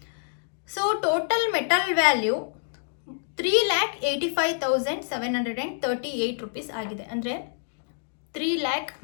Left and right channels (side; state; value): right; silent; digital silence